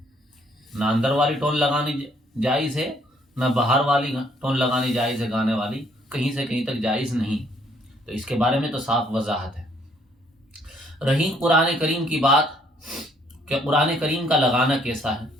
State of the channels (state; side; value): normal; both; correlation 0.65